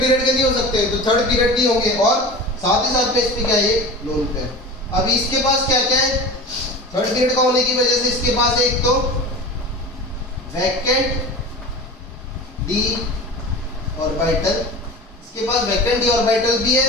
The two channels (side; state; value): both; normal; correlation 0.34